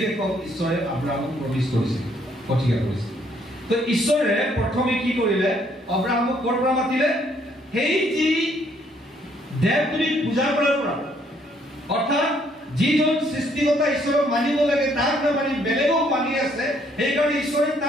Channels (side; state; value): both; normal; correlation 0.67